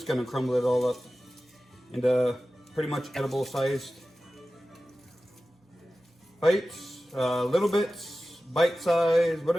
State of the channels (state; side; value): normal; both; correlation 0.95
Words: gonna crumble it all up into pretty much edible sized bites, little bits, bite size,